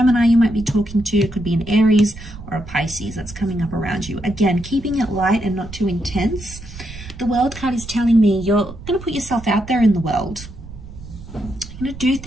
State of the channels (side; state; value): right; noise; rumble, 14 dB below the sound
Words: you might be talking to. It could be an Aries or a Pisces that's coming up around you. Again, keeping it light and not too intense. The World card is telling me you're going to put yourself out there in the world. You're going to do